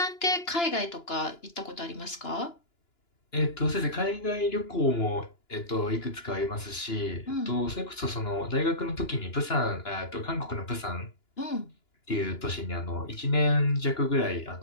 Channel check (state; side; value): late; right; 2.9 ms